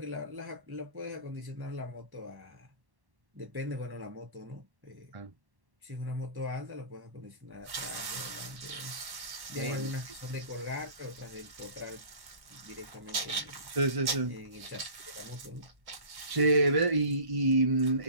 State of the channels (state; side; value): late; left; 1.1 ms